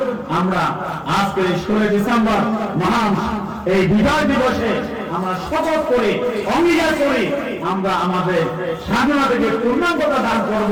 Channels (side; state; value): both; identical; correlation 1.00